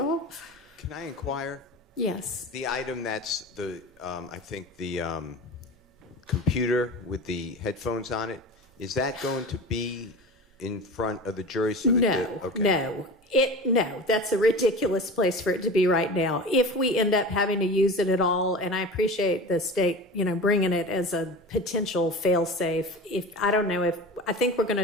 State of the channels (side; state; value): both; normal; correlation 0.32